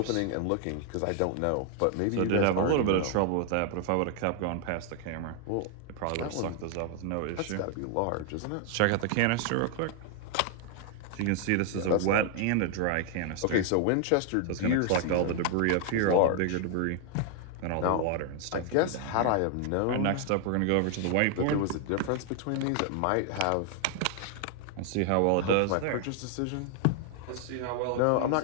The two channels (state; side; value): different; both; correlation 0.00